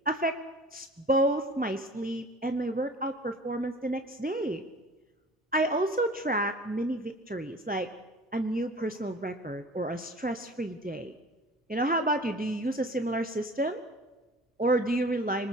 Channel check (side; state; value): both; normal; correlation 0.44